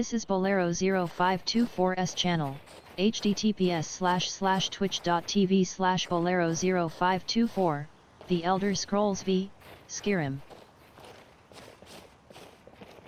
is Bolero 0524's channel, https://twitch.tv/Bolero 0524, The Elder Scrolls V, Skyrim.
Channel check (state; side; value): identical; both; correlation 1.00